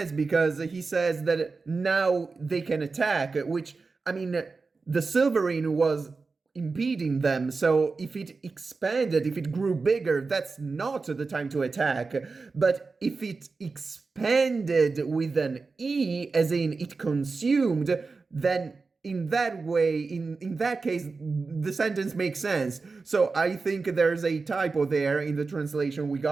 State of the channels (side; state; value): left; quieter; 4.2 dB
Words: because he says that now they can attack, which, I mean, the silverine was impeding them, so if it expanded, if it grew bigger, that's not the time to attack. But if it expanded with an E, as in it consumed, then in that way, in that case, the sentence makes sense. So I think there's a typo there in the translation we